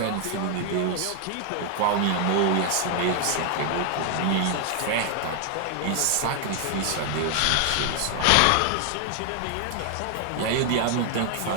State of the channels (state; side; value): different; both; correlation 0.00